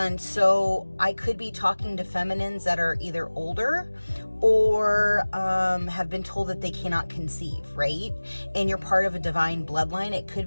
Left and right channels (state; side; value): inverted; both; correlation -1.00